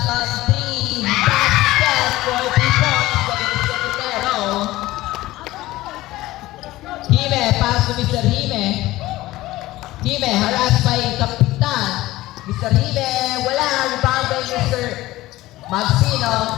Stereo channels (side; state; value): right; quieter; 17.3 dB